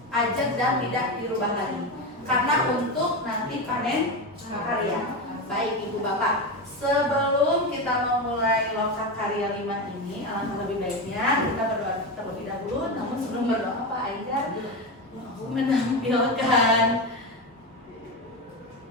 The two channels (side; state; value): both; normal; correlation 0.16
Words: ajak dan tidak dirubah lagi. Karena untuk nanti panen karya. Baik Ibu Bapak, sebelum kita memulai Loka Karya 5 ini, alangkah lebih baiknya kita berdoa terlebih dahulu. Namun sebelum berdoa Pak Aidar mau menampilkan,